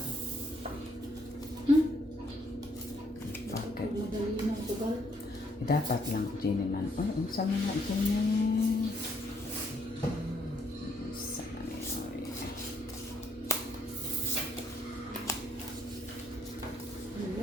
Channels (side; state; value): both; normal; correlation 0.70